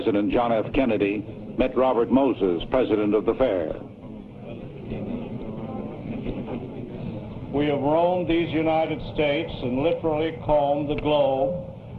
John F. Kennedy met Robert Moses, president of the fair. We have roamed these United States and literally combed the globe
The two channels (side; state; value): both; identical; correlation 1.00